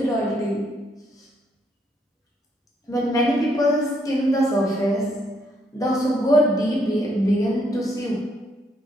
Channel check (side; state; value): both; normal; correlation 0.73